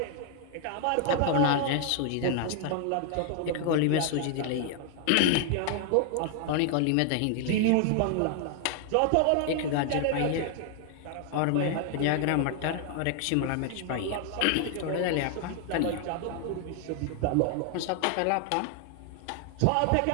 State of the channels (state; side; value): different; both; correlation 0.00